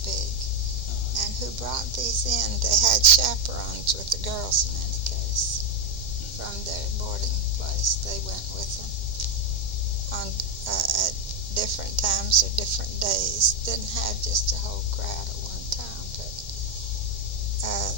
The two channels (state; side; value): late; left; 2.1 ms